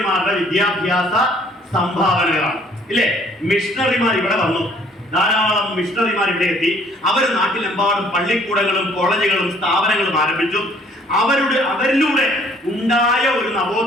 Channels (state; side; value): normal; both; correlation 0.60